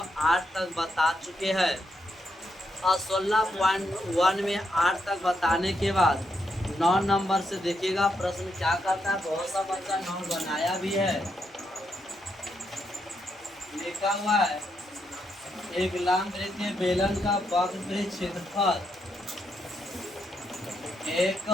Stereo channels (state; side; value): normal; both; correlation 0.80